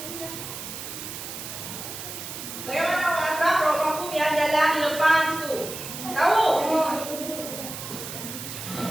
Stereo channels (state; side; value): noise; right; hiss, 9 dB below the sound